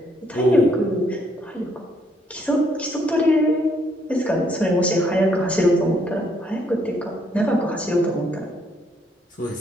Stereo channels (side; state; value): both; normal; correlation 0.70